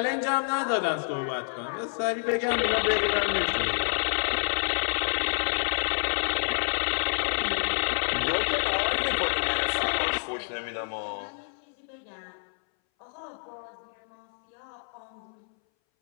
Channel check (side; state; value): right; silent; 59 dB below the other